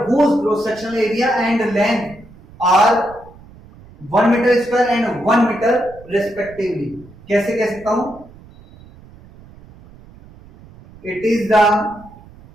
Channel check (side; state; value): right; noise; rumble, 22 dB below the sound